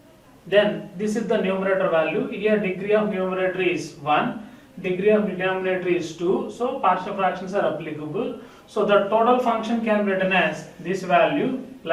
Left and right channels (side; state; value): both; identical; correlation 1.00